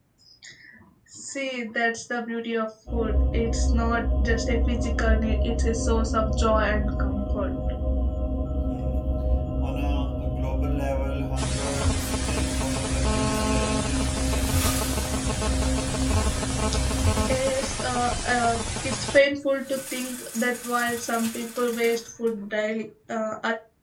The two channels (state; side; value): identical; both; correlation 1.00